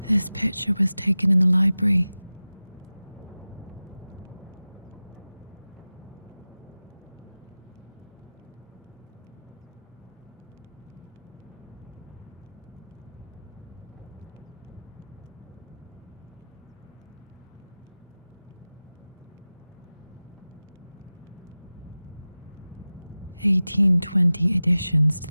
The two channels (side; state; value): both; inverted; correlation -0.97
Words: This picture was taken in the library. (1820) additions